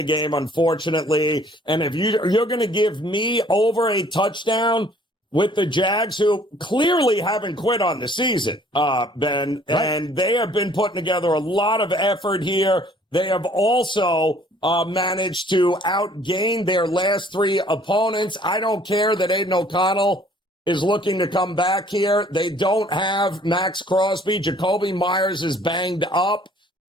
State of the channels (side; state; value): both; normal; correlation 0.57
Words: game, unfortunately. And if you're going to give me over a touchdown with the Jags, who clearly haven't quit on the season, Ben, right. And they have been putting together a lot of effort here. They have also managed to outgain their last 3 opponents. I don't care that Aiden O'Connell is looking to come back here. They don't have Max Crosby. Jacoby Myers is banged up.